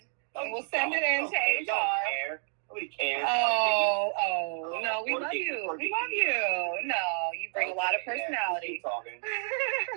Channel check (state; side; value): silent; left; 58 dB below the other